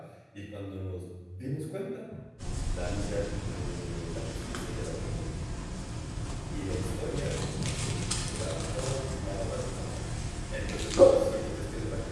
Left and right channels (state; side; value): identical; both; correlation 1.00